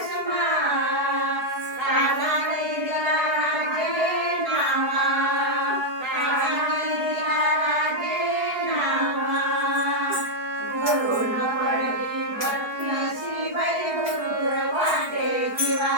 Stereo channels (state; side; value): late; left; 4.7 ms